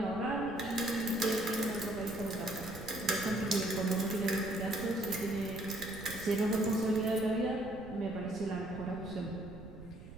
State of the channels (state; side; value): noise; right; rumble, 15 dB below the sound